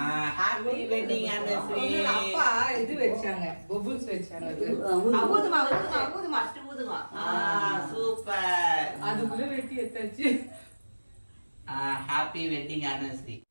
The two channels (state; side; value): inverted; both; correlation -1.00